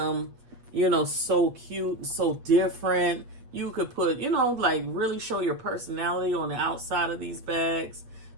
you know, so cute, so different. You could put, you know, like really show your personality on the outside of these bags.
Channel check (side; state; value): left; late; 8.3 ms